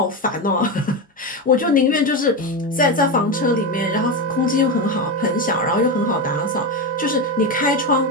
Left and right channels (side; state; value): both; normal; correlation 0.14